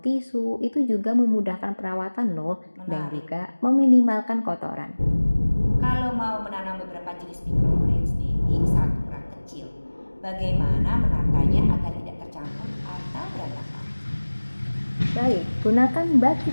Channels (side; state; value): both; inverted; correlation -1.00